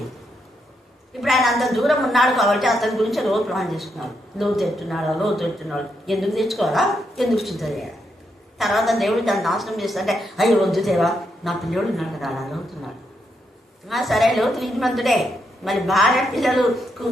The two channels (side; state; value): both; normal; correlation 0.80